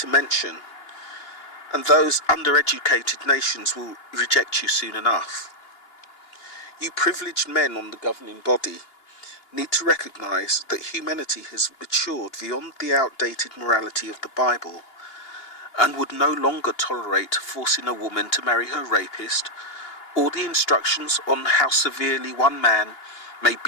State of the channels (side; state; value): right; late; 2.9 ms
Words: mention. And those undereducated nations will reject you soon enough. You privileged men on the governing body need to recognise that humanity has matured beyond the outdated morality of the Bible and would no longer tolerate forcing a woman to marry her rapist or the instructions on how severely one man may